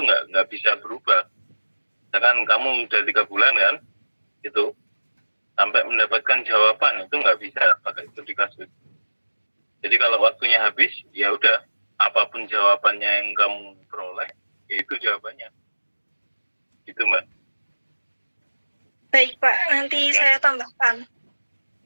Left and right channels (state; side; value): inverted; both; correlation -1.00